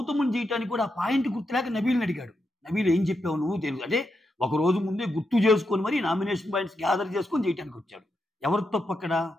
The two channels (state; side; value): normal; both; correlation 0.85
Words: చేయటానికి కూడా ఆ పాయింట్ గుర్తులేక నబీల్ని అడిగాడు. నబీల్ ఏం చెప్పావు నువ్వు తెలుసు, అంటే ఒక రోజు ముందే గుర్తు చేసుకొని మరి నామినేషన్ పాయింట్స్ గ్యాదర్ చేసుకొని చేయడానికి వచ్చాడు. ఎవరు తప్పు అక్కడ,